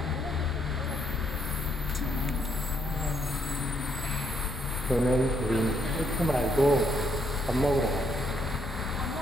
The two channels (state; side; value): normal; both; correlation 0.73